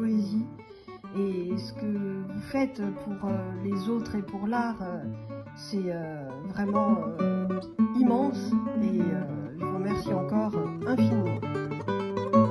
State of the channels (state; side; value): identical; both; correlation 1.00